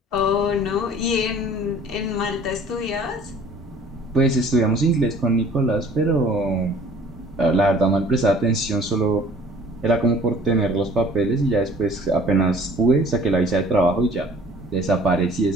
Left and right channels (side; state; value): both; normal; correlation 0.51